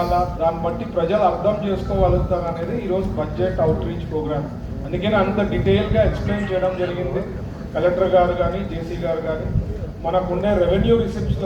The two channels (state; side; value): identical; both; correlation 1.00